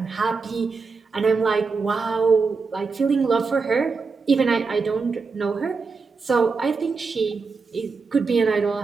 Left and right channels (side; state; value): left; quieter; 4.6 dB